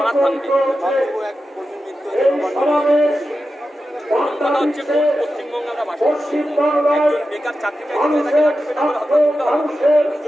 ভাঙবে। কথা হচ্ছে, কোন পশ্চিমবঙ্গে আমরা বাস করছি? একজন বেকার চাকরি চাইতে তাকে লাঠিপেটা করে হত্যা করতে হবে।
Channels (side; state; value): both; normal; correlation 0.91